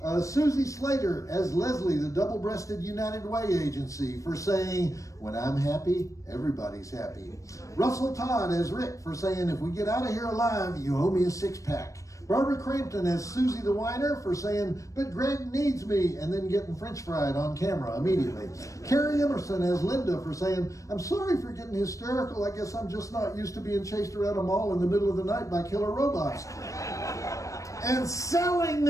Susie Slater as Leslie, the double-breasted United Way agency, for saying, when I'm happy, everybody's happy. Russell Todd as Rick for saying, if we get out of here alive, you owe me a 6-pack. Barbara Crampton as Susie the Whiner for saying, but Greg needs me, and then getting french fried on camera immediately. Carrie Emerson as Linda for saying, I'm sorry for getting hysterical, I guess I'm just not used to being chased around a mall in the middle of the night by killer robots. And selling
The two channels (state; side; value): late; right; 0.16 ms